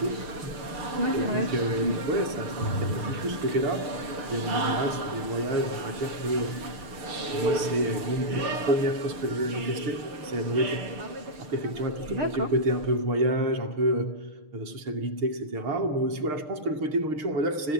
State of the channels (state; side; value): late; left; 6.6 ms